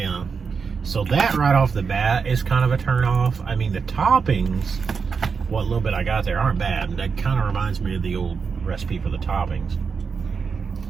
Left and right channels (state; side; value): quieter; left; 5.6 dB